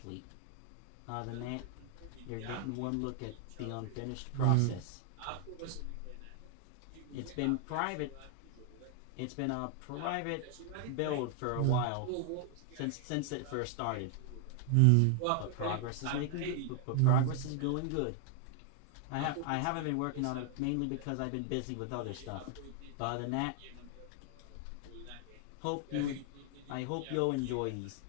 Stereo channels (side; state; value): both; different; correlation 0.00